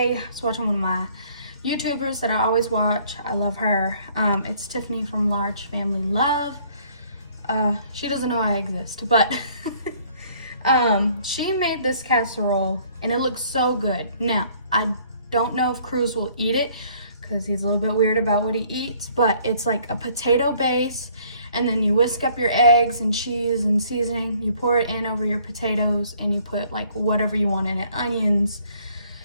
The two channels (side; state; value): both; inverted; correlation -0.60